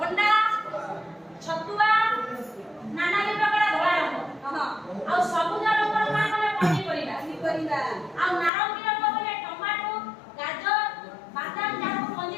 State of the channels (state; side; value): drops out; right; at 8.5 s